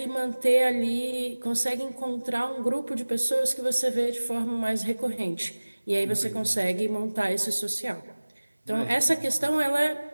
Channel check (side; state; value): both; inverted; correlation -1.00